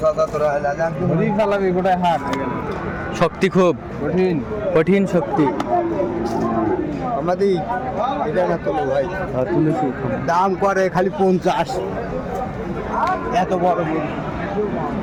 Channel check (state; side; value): identical; both; correlation 1.00